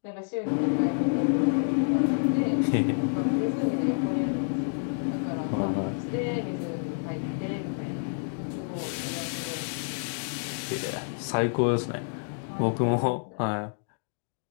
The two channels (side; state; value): right; silent; digital silence